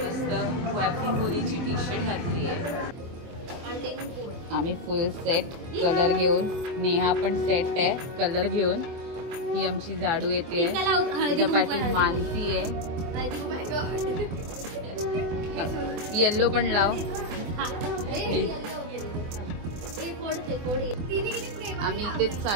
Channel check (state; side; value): late; left; 24 ms